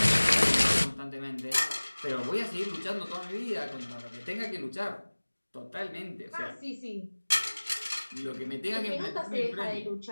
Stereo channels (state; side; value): inverted; both; correlation -1.00